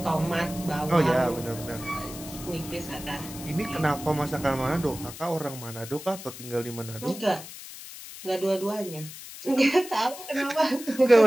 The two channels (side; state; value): left; noise; hiss, 13 dB below the sound